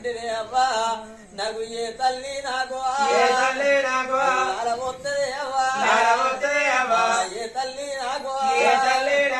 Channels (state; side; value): identical; both; correlation 1.00